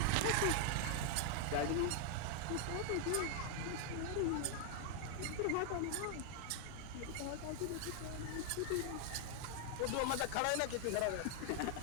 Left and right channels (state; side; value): different; both; correlation 0.00